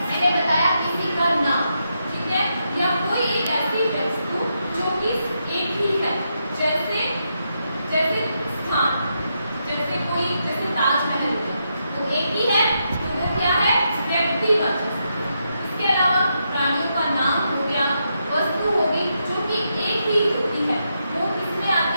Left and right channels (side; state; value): both; inverted; correlation -0.82